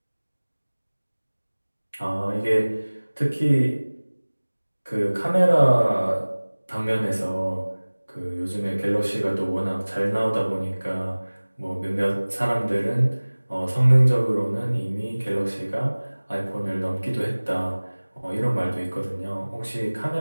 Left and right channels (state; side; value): inverted; both; correlation -1.00